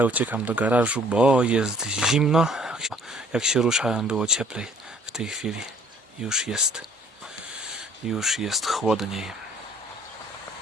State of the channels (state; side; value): normal; both; correlation 0.57